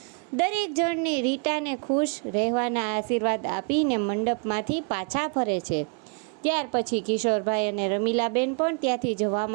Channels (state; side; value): quieter; left; 37.4 dB